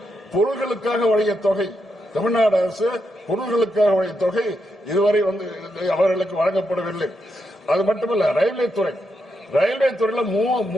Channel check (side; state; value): both; normal; correlation 0.83